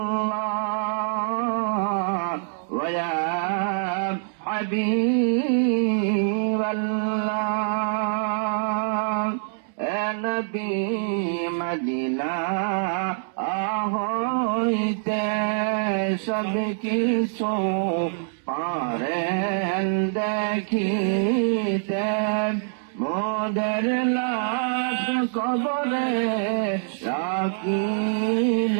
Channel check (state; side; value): silent; left; 62 dB below the other